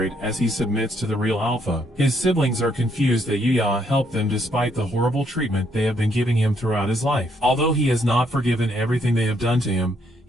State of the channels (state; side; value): normal; both; correlation 0.72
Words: as he submits to the real alpha. His siblings are confused that Yuya helped them despite the horrible treatment they have been giving him throughout his life. Although he has not forgiven everything they have done to him,